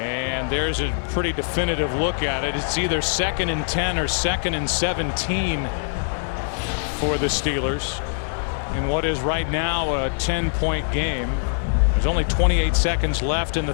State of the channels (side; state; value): right; silent; digital silence